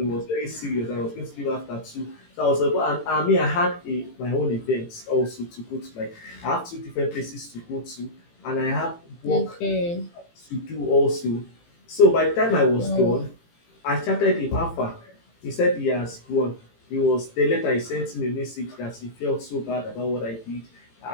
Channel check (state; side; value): late; right; 18 ms